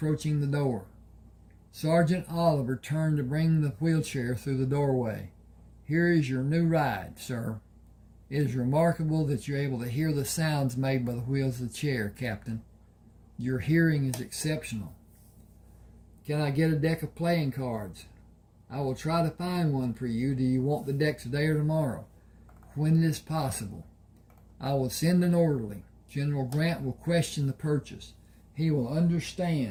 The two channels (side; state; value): both; identical; correlation 1.00